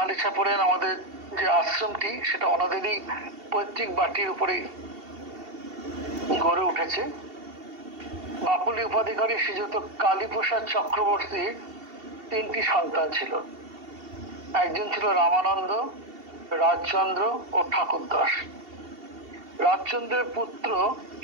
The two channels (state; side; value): late; left; 2.7 ms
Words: ইছাপুরের আমাদের যে আশ্রমটি সেটা ওনাদেরই পৈতৃক বাটির উপরেই গড়ে উঠেছে। বাপুলি উপাধিকারী শ্রীযুক্ত কালীপ্রসাদ চক্রবর্তীর 3টি সন্তান ছিল। একজন ছিল রামানন্দ, রাজচন্দ্র ও ঠাকুরদাস। রাজচন্দ্রের পুত্র